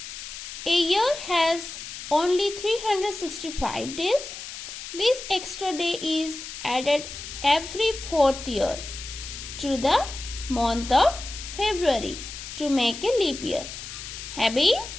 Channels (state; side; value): noise; left; hiss, 10 dB below the sound